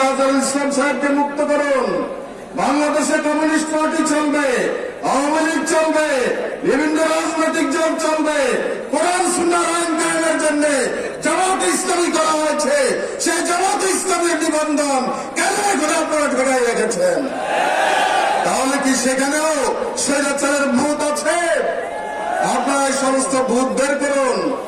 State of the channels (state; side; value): identical; both; correlation 1.00